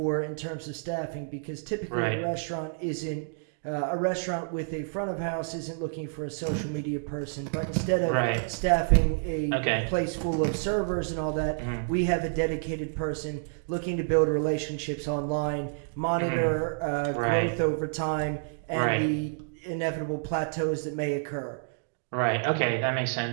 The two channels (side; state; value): left; silent; digital silence